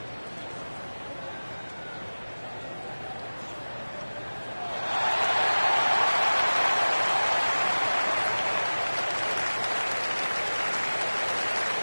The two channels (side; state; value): both; inverted; correlation -1.00